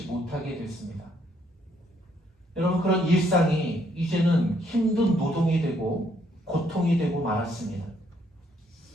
못하게 됐습니다. 여러분 그런 일상이 이제는 힘든 노동이 되고 고통이 되고 말았습니다.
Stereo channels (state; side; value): normal; both; correlation 0.69